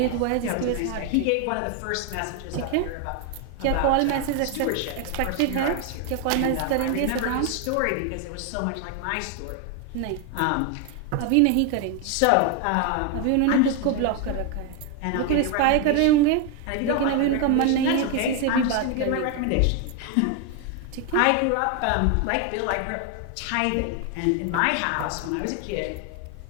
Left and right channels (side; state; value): both; different; correlation 0.01